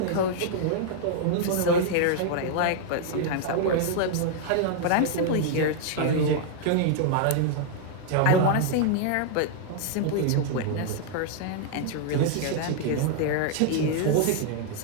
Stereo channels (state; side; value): different; both; correlation -0.01